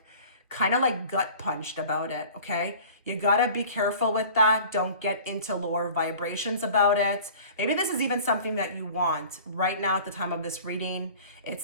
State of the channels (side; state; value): both; inverted; correlation -0.45